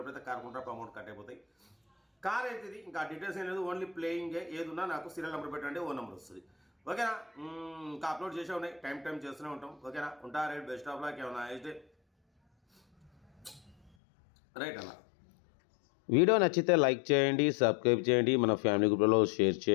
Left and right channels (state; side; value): drops out; right; at 13.9 s